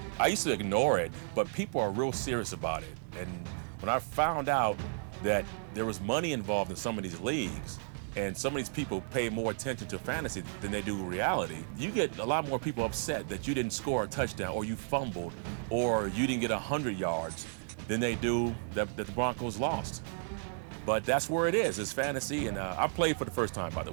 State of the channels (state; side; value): silent; left; 56 dB below the other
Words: I used to ignore it, but people are real serious about it. And when I found out that there was money involved in some of these leagues, and some of these people pay more attention to fantasy than they do reality, you get a lot more people upset that you didn't score a touchdown, or you fumbled, or you didn't get 100 yards than they do that the Broncos lost. But that's where it is. It's fantasy, and I played for the first time, by the